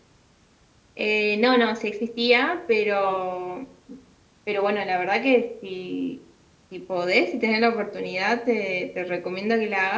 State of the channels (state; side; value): identical; both; correlation 1.00